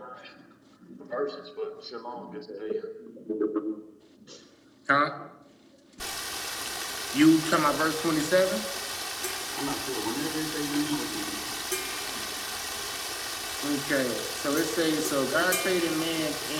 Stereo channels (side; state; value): both; identical; correlation 1.00